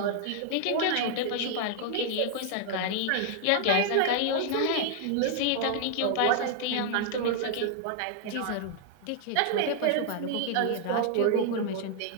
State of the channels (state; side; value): different; both; correlation 0.00